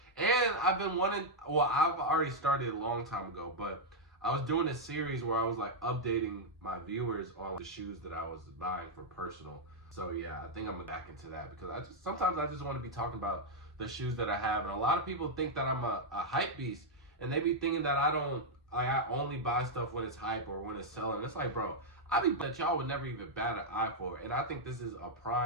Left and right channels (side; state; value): both; normal; correlation -0.03